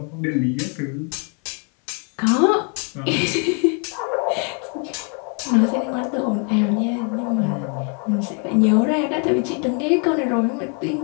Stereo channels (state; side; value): quieter; right; 38.0 dB